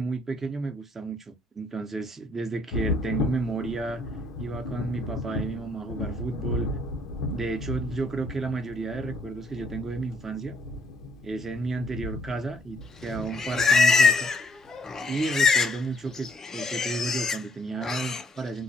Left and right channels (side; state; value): both; normal; correlation 0.67